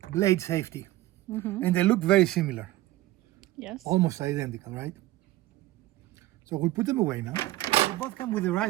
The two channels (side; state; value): left; quieter; 16.8 dB